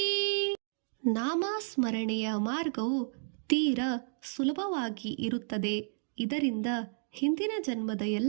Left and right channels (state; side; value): silent; left; digital silence